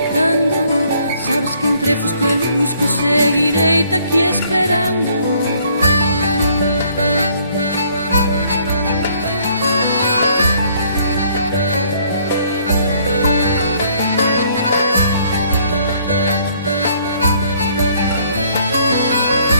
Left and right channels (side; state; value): both; inverted; correlation -0.63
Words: cando. Sabes que entre fusco e lusco seguirei aquí esperando.